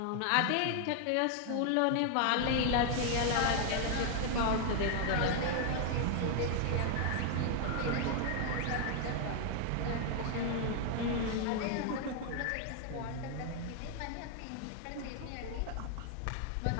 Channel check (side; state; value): both; different; correlation 0.00